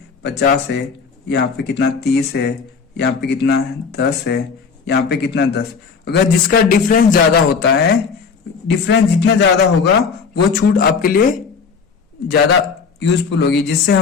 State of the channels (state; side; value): quieter; right; 5.6 dB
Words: 50 है, यहाँ पे कितना 30 है, यहाँ पे कितना 10 है, यहाँ पे कितना 10, अगर जिसका डिफरेंस ज्यादा होता है, डिफरेंस जितना ज्यादा होगा वो छूट आपके लिए ज्यादा यूजफुल होगी, जिससे